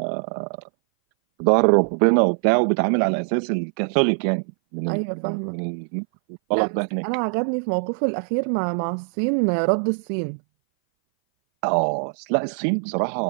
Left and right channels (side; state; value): left; silent; 59 dB below the other